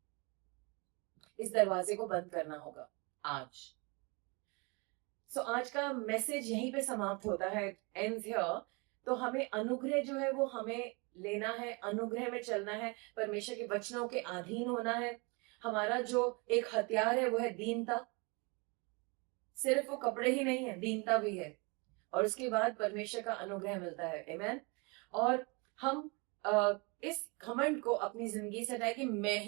इस दरवाजे को बंद करना होगा आज। सो आज का मैसेज यहीं पे समाप्त होता है, एंड्स हियर। तो हमें अनुग्रह जो है वो हमें लेना है, अनुग्रह में चलना है, परमेश्वर के वचनों के अधीन होना है। हमारा जो एक हथियार है वो है दीनता। सिर्फ वो कपड़े ही नहीं है, दीनता भी है, और उसके बाद परमेश्वर का अनुग्रह मिलता है। आमेन। और हम इस घमंड को अपनी जिंदगी से हटाए कि मैं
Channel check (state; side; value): quieter; left; 29.8 dB